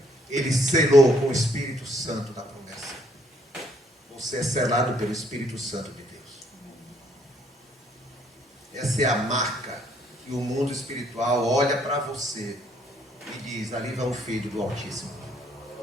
Ele selou com o Espírito Santo da promessa. Você é selado pelo Espírito Santo de Deus. Essa é a marca que o mundo espiritual olha para você e diz: ali vai um filho do Altíssimo.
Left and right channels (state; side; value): normal; both; correlation 0.67